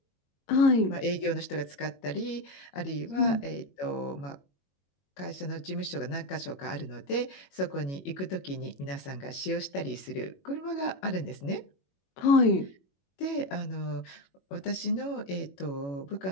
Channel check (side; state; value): right; late; 21 ms